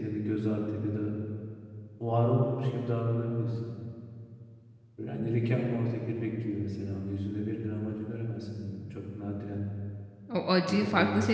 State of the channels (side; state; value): both; identical; correlation 1.00